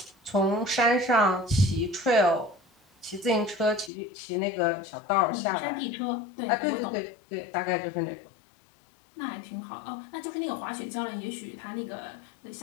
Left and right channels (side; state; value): right; drops out; at 3.9 s